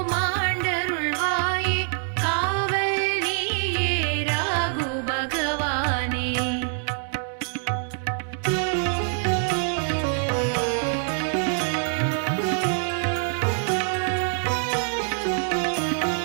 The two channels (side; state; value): left; silent; 60 dB below the other